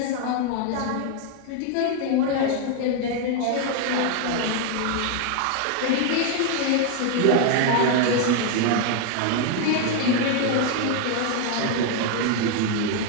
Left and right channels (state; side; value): different; both; correlation 0.00